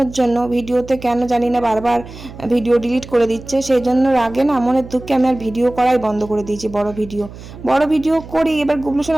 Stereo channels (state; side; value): noise; right; hum, 15 dB below the sound